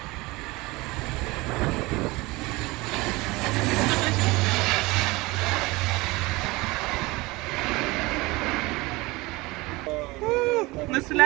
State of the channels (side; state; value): left; quieter; 22.2 dB